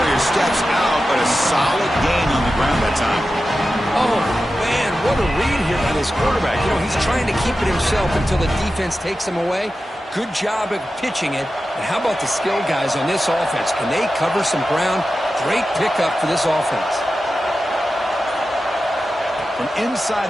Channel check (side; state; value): both; normal; correlation 0.92